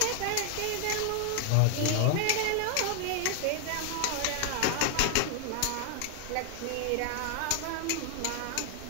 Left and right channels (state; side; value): different; both; correlation 0.00